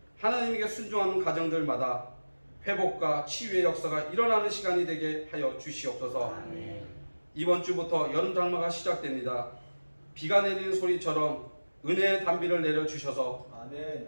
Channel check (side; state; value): both; inverted; correlation -1.00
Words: 하나님에게 순종하는 가정들마다 회복과 치유의 역사가 일어나는 시간이 되게 하여 주시옵소서. 이번 주부터 여름 장마가 시작됩니다. 비가 내리는 소리처럼 은혜의 단비를 내려주셔서